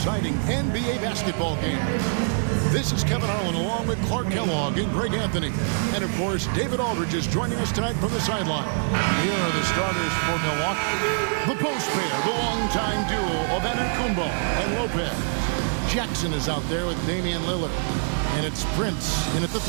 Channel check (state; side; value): silent; left; 62 dB below the other